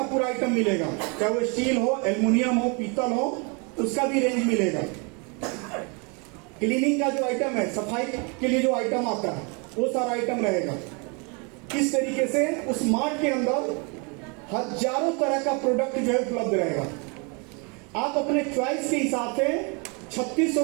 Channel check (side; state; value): left; quieter; 33.0 dB